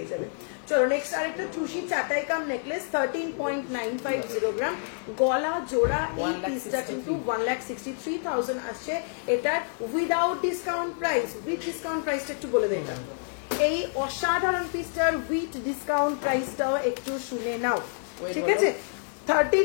যাবে। চলো নেক্সট আরেকটা টুসি চাটাই কাম নেকলেস, 13.950 গ্রাম, গলা জোড়া। এই পিসটা কিন্তু 1,63,000 আসছে, এটার without discount price. With discount প্রাইসটা একটু বলে দেয়। এই অসাধারণ পিসটার উইথ ডিসকাউন্ট প্রাইসটাও একটু শুনে নাও, ঠিক আছে।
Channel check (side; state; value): right; silent; 57 dB below the other